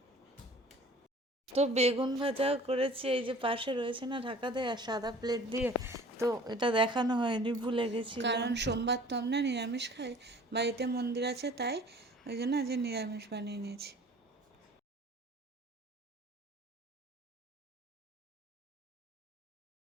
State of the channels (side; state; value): both; normal; correlation 0.48